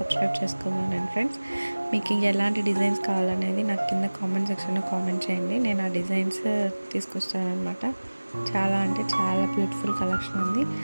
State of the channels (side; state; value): both; inverted; correlation -1.00